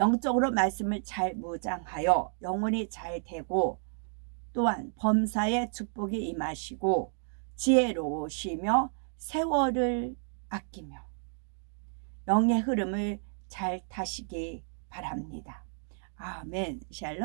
말씀을 잘 무장하여 영혼이 잘 되고 또한 범사의 축복이 임하시고 지혜로우시며 세월을 아끼며 영의 흐름을 잘 타시기 바랍니다. 아멘.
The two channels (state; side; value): silent; left; 57 dB below the other